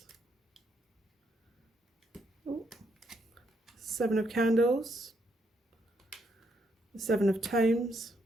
7 of Candles. The 7 of Tomes.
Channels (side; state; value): both; normal; correlation 0.76